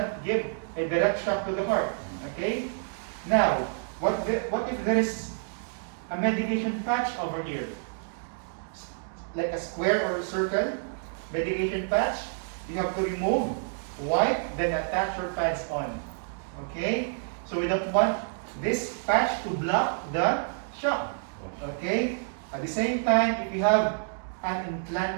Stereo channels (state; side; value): silent; left; digital silence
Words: give a direct shock to the heart. Okay? Now, what if there is a medication patch over here? Like a square or a circle, medication patch, you have to remove, wipe, then attach your pads on. Okay? So we don't want this patch to block the shock. Okay? At the same time, if you have an